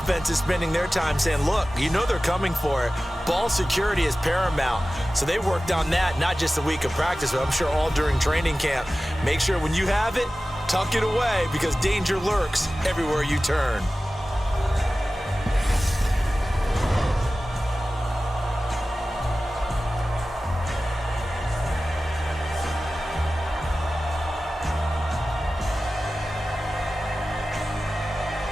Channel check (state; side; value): normal; both; correlation 0.96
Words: spending their time saying, look, you know they're coming for it. Ball security is paramount. So they worked on that, not just a week of practice, but I'm sure all during training camp. Make sure when you have it, tuck it away because danger lurks everywhere you turn.